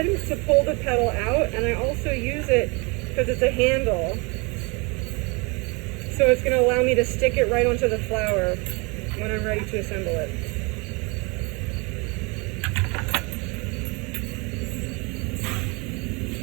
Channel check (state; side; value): quieter; left; 29.1 dB